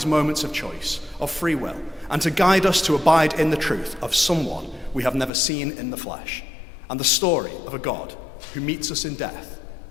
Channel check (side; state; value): right; drops out; at 5.3 s